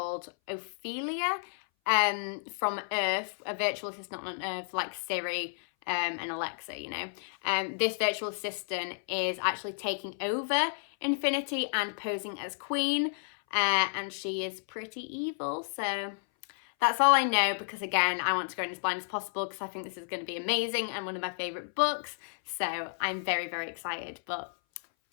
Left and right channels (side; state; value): right; silent; 57 dB below the other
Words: Ophelia from Earth, a virtual assistant on Earth like Siri and Alexa, you know, this virtual assistant is actually taking over Infinity and posing as queen, and she is pretty evil. So that's all I know, because again, I want to go in as blind as possible because I think this is going to be amazing and one of my favorite books. So I'm very, very excited. But